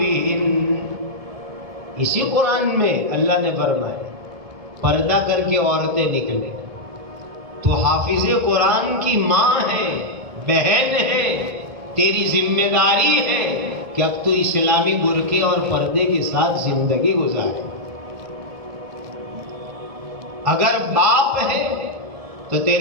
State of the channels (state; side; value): late; left; 1.7 ms